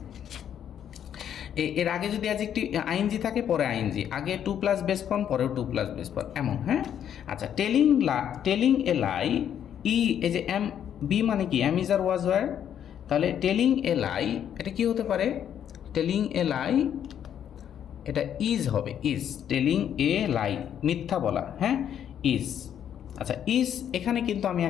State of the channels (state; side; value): quieter; right; 9.5 dB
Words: এর আগে যদি অ্যাডজেক্টিভ আইএনজি থাকে পরে আইএনজি, আগে 2+ বেস ফর্ম পরেও 2+ বেস ফর্ম, এমন, হ্যাঁ। আচ্ছা টেলিং এ লাই, এই যে এম বি মানে কি, am is are was were, তাহলে টেলিং এ লাই এটা কি হতে পারে, টেলিং এ লাই এটা ইজ হবে, ইজ, টেলিং এ লাই মিথ্যা বলা, হ্যাঁ ইজ। আচ্ছা ইজ এখানে কিন্তু আমি